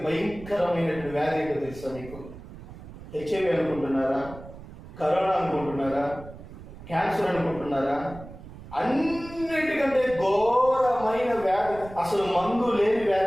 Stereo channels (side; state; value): right; noise; rumble, 15 dB below the sound